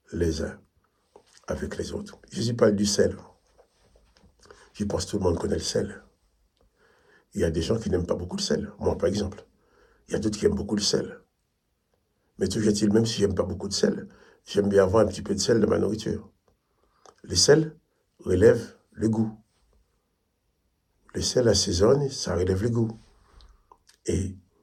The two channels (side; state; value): both; identical; correlation 1.00